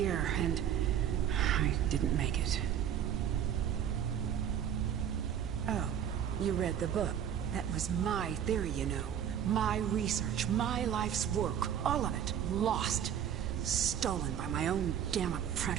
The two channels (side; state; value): left; quieter; 9.3 dB